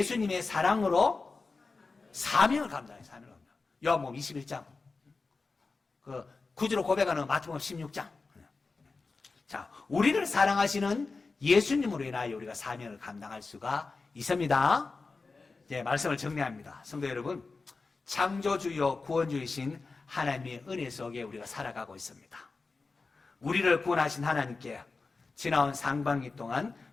사랑으로 사명을 감당해요. 사명을 감당. 요한복음 21장. 그 구주로 고백하는 마태복음 16장. 자, 우리를 사랑하시는 예수님으로 인하여 우리가 사명을 감당할 수가 있습니다. 이제 말씀을 정리합니다. 성도 여러분, 창조주요 구원주이신 하나님의 은혜 속에 우리가 살아가고 있습니다. 우리를 구원하신 하나님께 지나온 상반기 동안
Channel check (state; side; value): quieter; right; 4.1 dB